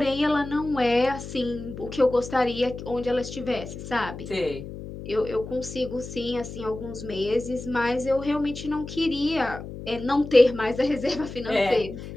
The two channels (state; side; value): noise; left; hum, 11 dB below the sound